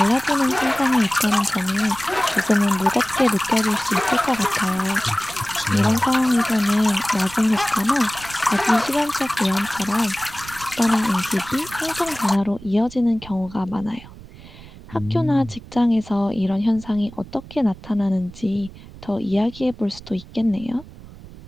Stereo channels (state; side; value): noise; right; rumble, 18 dB below the sound